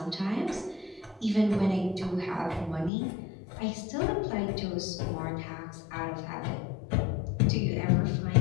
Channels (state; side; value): drops out; right; at 2.9 s